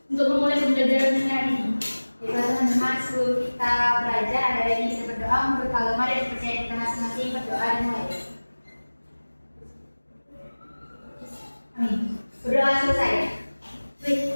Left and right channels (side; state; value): both; inverted; correlation -1.00